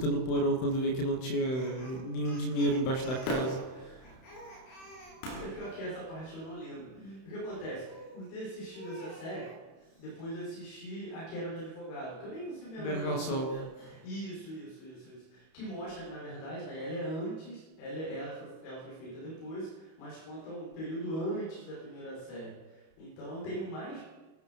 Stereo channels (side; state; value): right; late; 31 ms